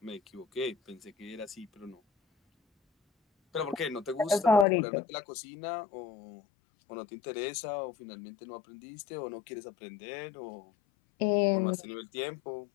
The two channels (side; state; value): right; drops out; at 4.7 s